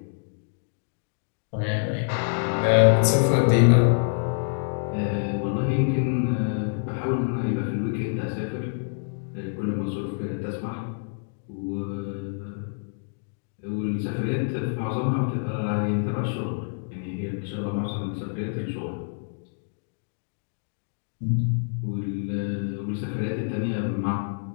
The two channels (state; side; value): silent; right; digital silence